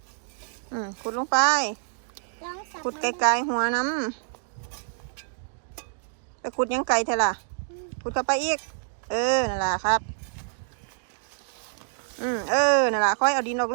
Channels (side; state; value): left; silent; digital silence